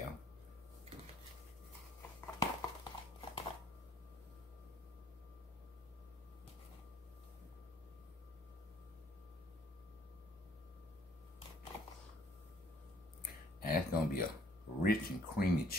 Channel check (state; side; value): normal; both; correlation 0.62